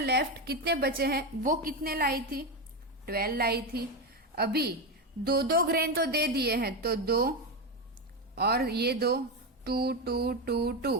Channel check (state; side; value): normal; both; correlation 0.12